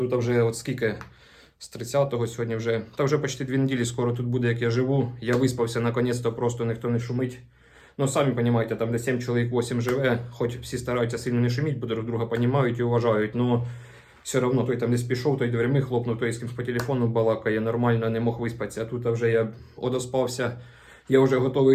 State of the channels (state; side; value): identical; both; correlation 1.00